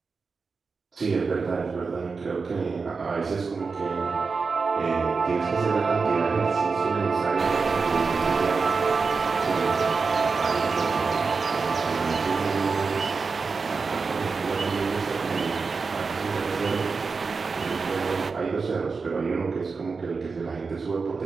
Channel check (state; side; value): quieter; left; 4.7 dB